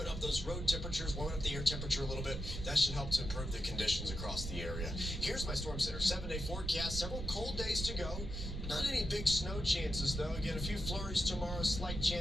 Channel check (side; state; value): right; noise; rumble, 5 dB below the sound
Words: up those road temperatures, warming up the air temperature a little bit, that should help to improve the conditions across the area. Here's my Storm Center 7-day forecast. Several cold days to go. Not any big snow chances, though. Again, a few flurries tomorrow, slight